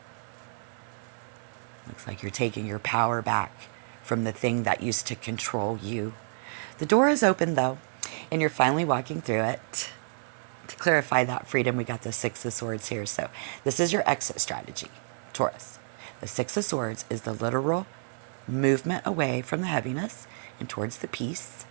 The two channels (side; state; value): left; silent; 58 dB below the other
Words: Looks like you're taking your power back from the thing that used to control you. The door is open, though, and you're finally walking through it. To clarify that freedom, we got the Six of Swords here. So this is your exit strategy, Taurus. The Six of Swords is the literal movement away from the heaviness and towards the peace.